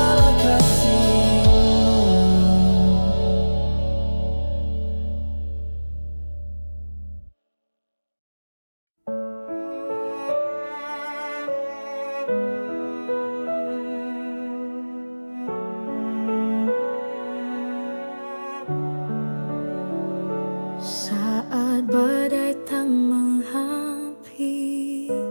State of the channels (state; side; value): inverted; both; correlation -1.00